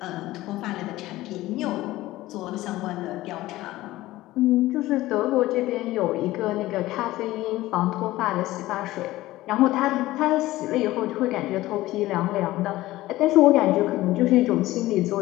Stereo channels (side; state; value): right; quieter; 17.0 dB